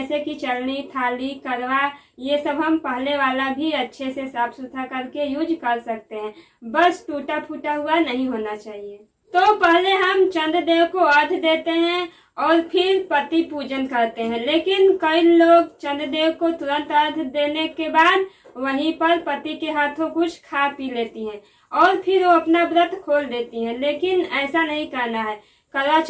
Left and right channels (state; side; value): identical; both; correlation 1.00